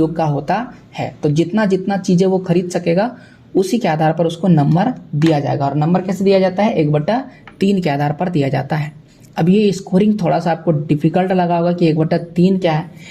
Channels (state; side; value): identical; both; correlation 1.00